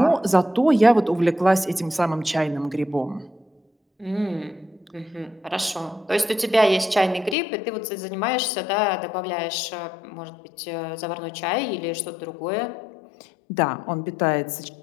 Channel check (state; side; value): drops out; right; at 7.4 s